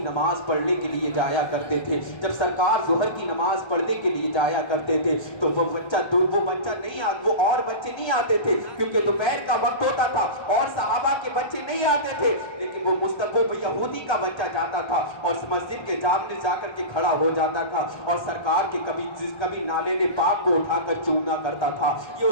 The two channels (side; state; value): right; late; 1.3 ms